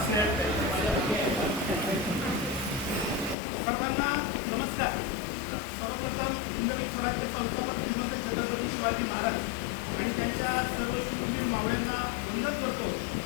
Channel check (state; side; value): drops out; right; at 3.4 s